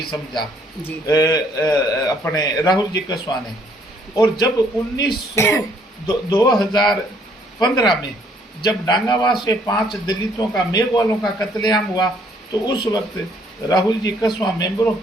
समझा अपने राहुल जी कसवा ने। और जब 2015 में जब डांगावा से 5 दलितों का, मेघवालों का कत्लेआम हुआ, तो उस वक्त राहुल जी कसवा मेंबर ऑफ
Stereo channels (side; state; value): both; normal; correlation 0.65